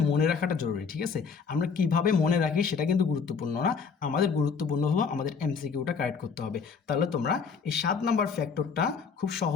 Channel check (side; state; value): right; quieter; 5.8 dB